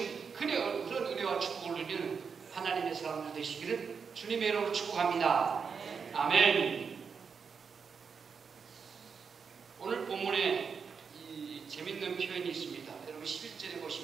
그런 은혜와 축복을 누리는 하나님의 사람들 되시기를 주님의 이름으로 축복합니다. 아멘. 오늘 본문에 이 재밌는 표현이 있습니다. 여러분 11절에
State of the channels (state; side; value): quieter; left; 5.9 dB